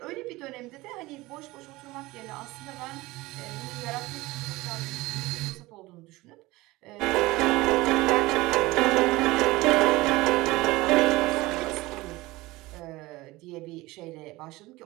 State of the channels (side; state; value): left; quieter; 20.1 dB